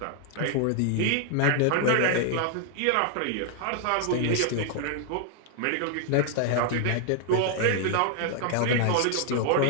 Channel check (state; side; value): different; both; correlation 0.00